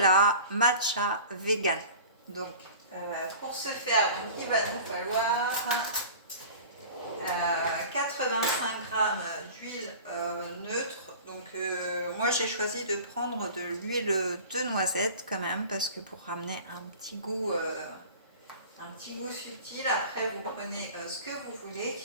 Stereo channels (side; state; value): both; inverted; correlation -0.40